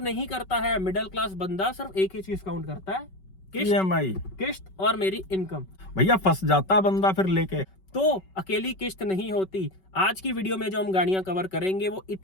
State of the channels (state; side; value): late; right; 5.3 ms